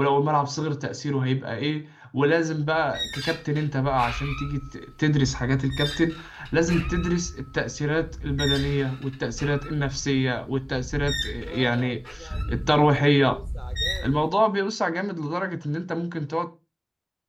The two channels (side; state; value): both; identical; correlation 1.00